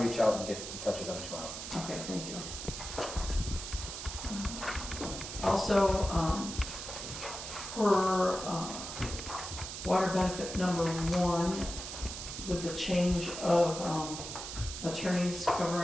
out and get in touch with them tomorrow. Okay, thank you. Also, for water benefit number 1, with the change of attorneys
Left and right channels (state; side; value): noise; right; hiss, 7 dB below the sound